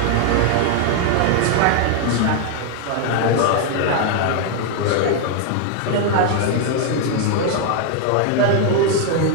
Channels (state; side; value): different; both; correlation 0.00